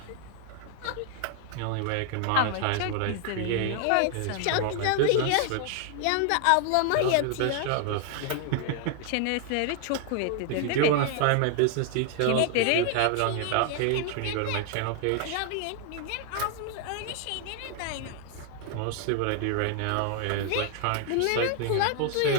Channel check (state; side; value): different; both; correlation 0.00